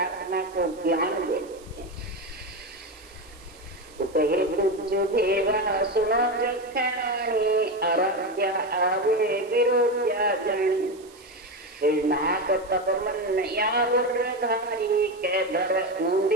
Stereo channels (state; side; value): noise; right; hiss, 25 dB below the sound